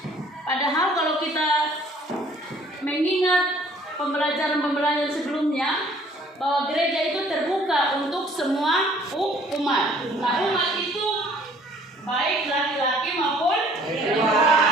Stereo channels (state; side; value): normal; both; correlation 0.57